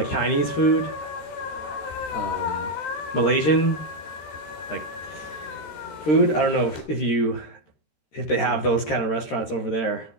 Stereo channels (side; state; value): right; late; 13 ms